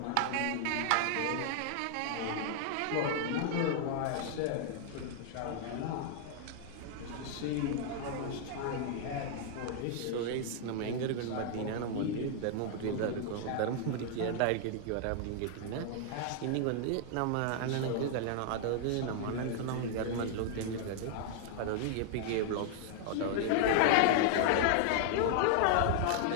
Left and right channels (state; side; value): different; both; correlation 0.00